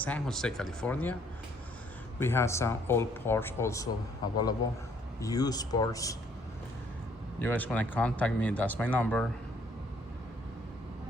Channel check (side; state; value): both; normal; correlation 0.64